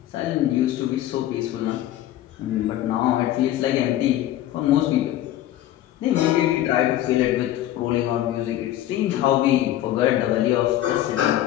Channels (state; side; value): quieter; right; 13.3 dB